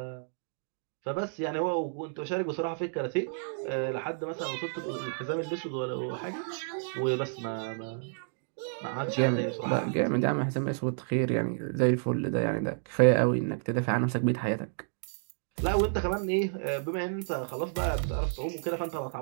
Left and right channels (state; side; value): silent; left; digital silence